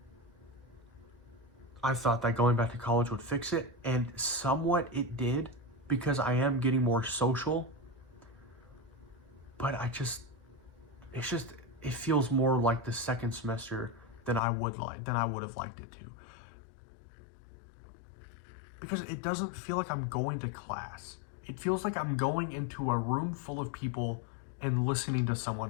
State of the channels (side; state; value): right; drops out; at 14.4 s